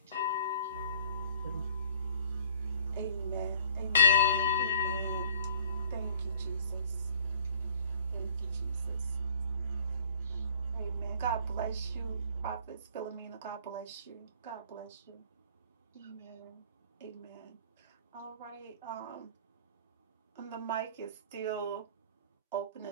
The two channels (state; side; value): inverted; both; correlation -0.53